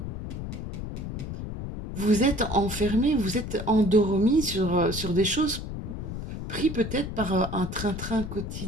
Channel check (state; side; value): noise; left; rumble, 7 dB below the sound